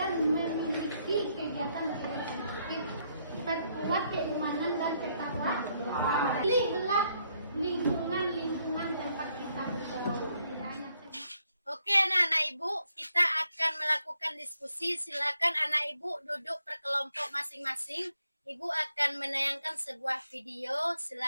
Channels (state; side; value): inverted; both; correlation -0.74